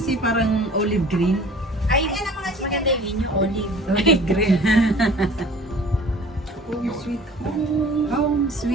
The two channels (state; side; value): normal; both; correlation 0.47